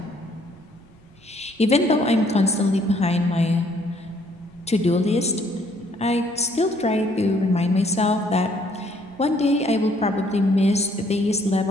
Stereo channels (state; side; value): noise; right; rumble, 27 dB below the sound